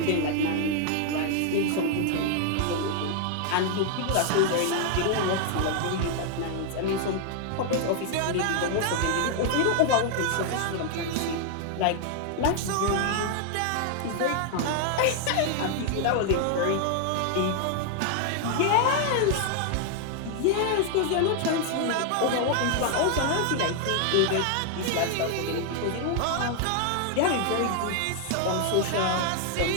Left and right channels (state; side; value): different; both; correlation 0.00